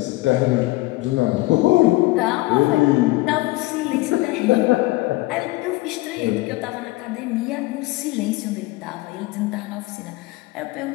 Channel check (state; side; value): quieter; right; 20.2 dB